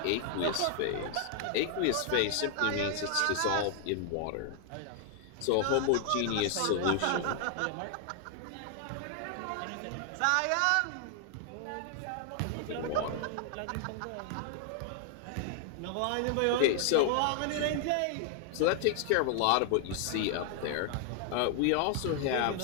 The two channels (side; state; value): both; different; correlation 0.00